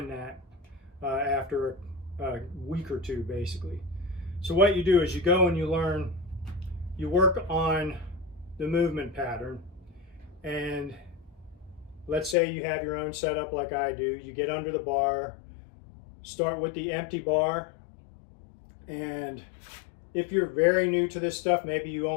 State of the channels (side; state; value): right; drops out; at 12.4 s